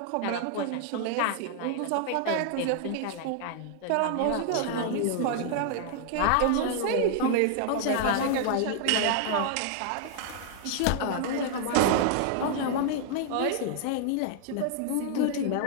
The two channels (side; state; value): both; different; correlation 0.00